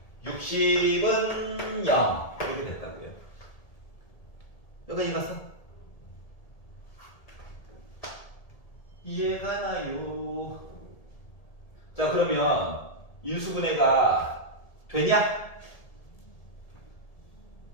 60은 0 이렇게 됐다고요. 여기까지 갔어? 이해가 나요. 자, 그러면 인수분해가 되냐?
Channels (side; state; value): right; late; 1.8 ms